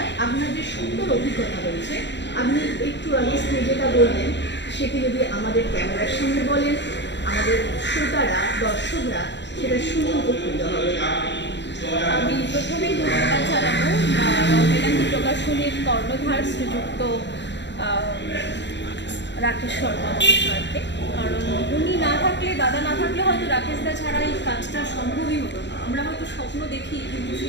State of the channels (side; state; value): right; late; 0.52 ms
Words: আপনার যে সুন্দর অভিজ্ঞতা রয়েছে, আপনি একটু আগে যেটা বললেন সেটি যদি আমাদের ক্যামেরার সামনে বলেন, আমাদের শ্রোতারা, দর্শকরা সেটা শুনে উপকৃত হবে। আমি প্রথমেই ধন্যবাদ জানাবো রবীন্দ্রনাথ প্রকাশনীর কর্ণধার শ্রীযুক্ত রাকেশ শর্মা মহাশয়কে। কারণ উনি না থাকলে, দাদা না থাকলে হয়তো রাকেশদা ছাড়া এই কাজটা সম্ভবই হতো না। আমরা হয়তো স্বপ্ন দেখি, কিন্তু